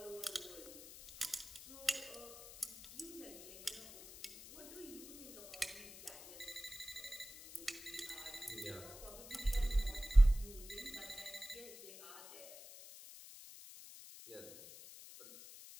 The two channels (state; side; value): noise; left; hiss, 15 dB below the sound